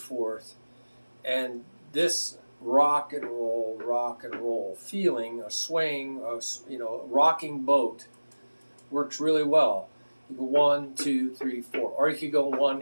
And this rock and roll feeling, a swaying, rocking boat works really well. You go 1, 2, 3, 4. Or you could go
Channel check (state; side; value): inverted; both; correlation -1.00